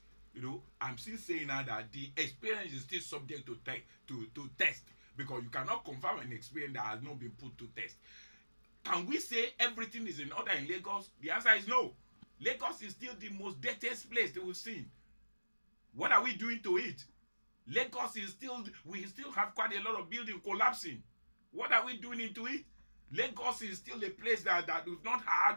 I'm still saying now that the experience is still subject to test, because you cannot confirm an experience that has not been put to test. Can we say everything is in order in Lagos? The answer is no. Lagos is still the most dirtiest place that we've seen. What are we doing to it? Lagos is still, we still have quite a lot of buildings collapsing. What are we doing into it? Lagos is still a place that we've not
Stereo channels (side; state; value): both; inverted; correlation -1.00